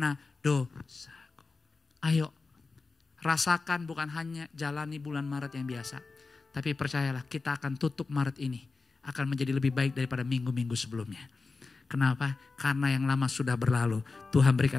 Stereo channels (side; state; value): right; quieter; 4.0 dB